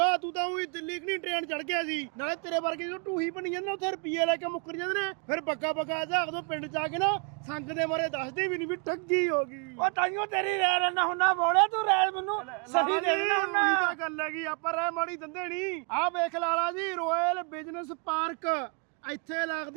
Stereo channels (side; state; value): left; quieter; 36.0 dB